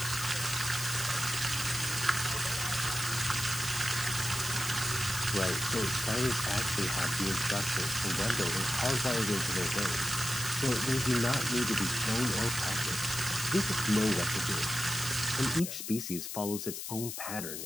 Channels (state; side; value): noise; left; hiss, 6 dB below the sound